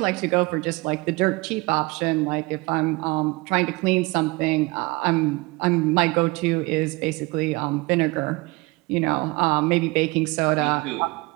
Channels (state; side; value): quieter; left; 24.2 dB